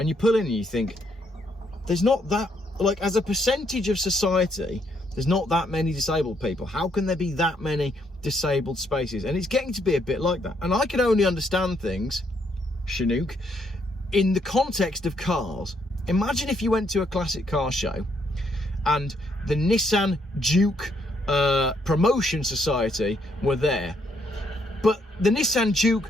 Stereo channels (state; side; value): normal; both; correlation 0.73